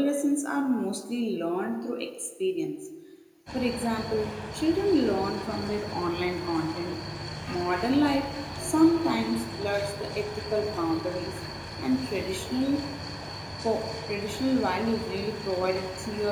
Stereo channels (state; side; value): identical; both; correlation 1.00